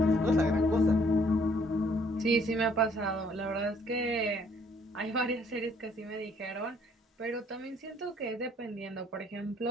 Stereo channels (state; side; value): normal; both; correlation 0.63